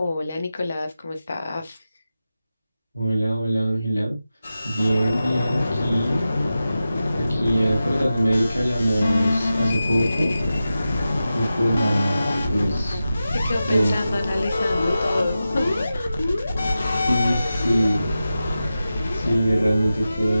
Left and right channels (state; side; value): inverted; both; correlation -0.92